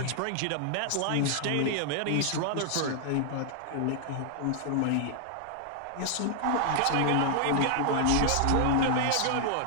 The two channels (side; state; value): both; different; correlation 0.00